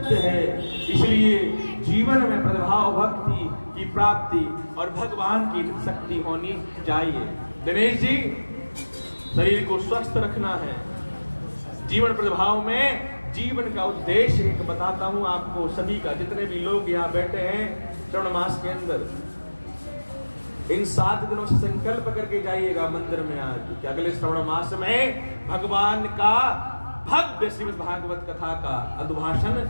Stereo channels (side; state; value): both; inverted; correlation -1.00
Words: है। इसलिए जीवन में प्रतिभाव भक्ति की प्राप्ति और भगवान की शक्ति होनी चाहिए। दिनेश जी, शरीर को स्वस्थ रखना है। जीवन प्रतिभाव में जीवन का उद्देश्य एक बताता हूं आपको सभी का, जितने भी लोग यहाँ बैठे हैं श्रवण मास के अंदर, इन 7 दिनों से संकल्प करके जाइएगा मंदिर में आज कि अगले श्रवण मास में भगवान का भव्य श्रीमद् भागवत कथा का अभिभाषण